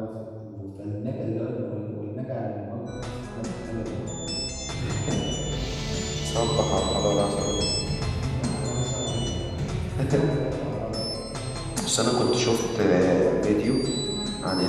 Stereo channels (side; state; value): both; identical; correlation 1.00